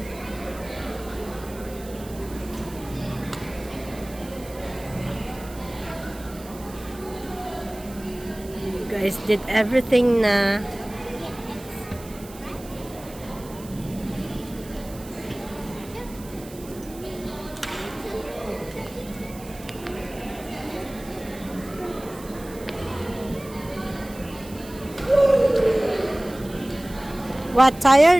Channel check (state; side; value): noise; right; hiss, 18 dB below the sound